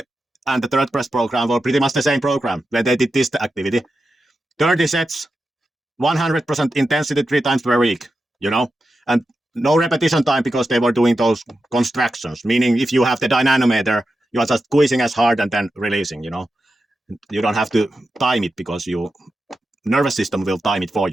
and the third best program were pretty much the same program, where they did this activity. 30 sets, 100% intensity 3 times per week, you know, and no repetition time because they were doing those contractions, meaning if you have the dynamometer, you are just squeezing as hard and then releasing, you know. You don't have to time it because your nervous system will time it for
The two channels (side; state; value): both; normal; correlation 0.90